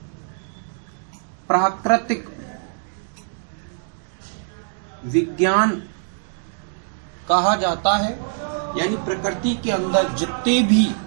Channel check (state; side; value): silent; left; digital silence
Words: प्राकृतिक विज्ञान कहा जाता है। यानी प्रकृति के अंदर जितने भी